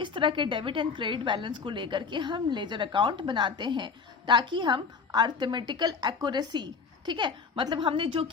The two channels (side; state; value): right; quieter; 5.2 dB